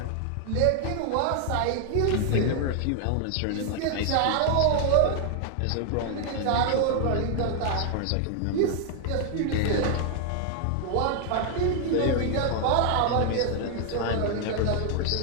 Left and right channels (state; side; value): different; both; correlation 0.00